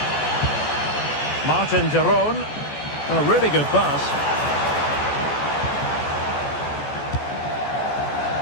Martin de Roon. A really good pass.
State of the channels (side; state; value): right; late; 14 ms